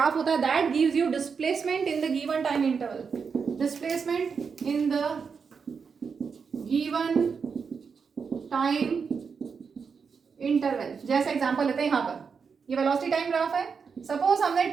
होता है, that gives you displacement in the given time interval. Displacement in the given time interval. जैसे एग्जांपल लेते हैं, यहाँ पर ये वेलोसिटी टाइम ग्राफ है। सपोज हमने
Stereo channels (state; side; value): quieter; left; 5.8 dB